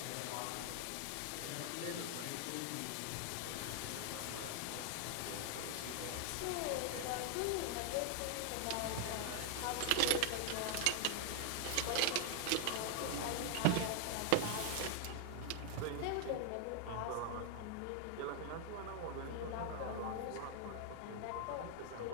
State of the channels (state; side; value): different; both; correlation 0.00